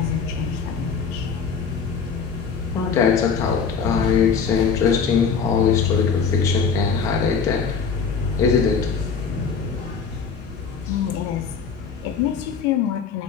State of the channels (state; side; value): quieter; right; 6.0 dB